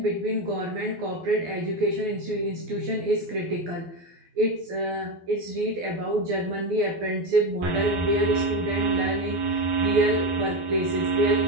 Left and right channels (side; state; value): left; late; 12 ms